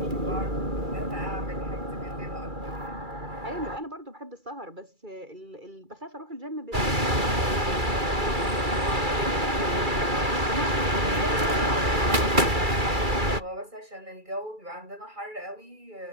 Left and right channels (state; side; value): late; left; 2.3 ms